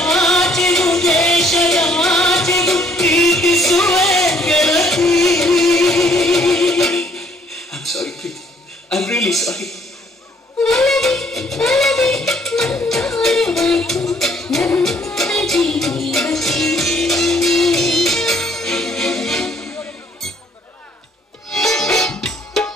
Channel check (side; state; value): both; normal; correlation 0.64